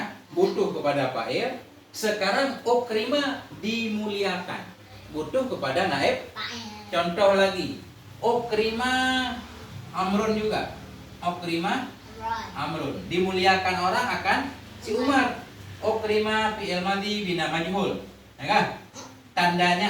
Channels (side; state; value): both; identical; correlation 1.00